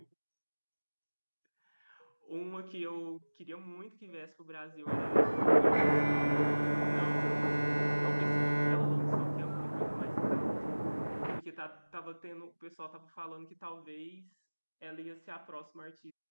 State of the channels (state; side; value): inverted; both; correlation -1.00